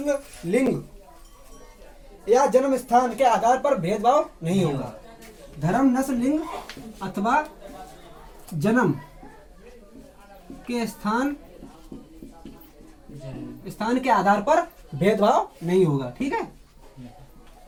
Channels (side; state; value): both; identical; correlation 1.00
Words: लिंग या जन्म स्थान के आधार पर भेदभाव नहीं होगा। धर्म, नस्ल, लिंग अथवा जन्म के स्थान के आधार पर भेदभाव नहीं होगा, ठीक है,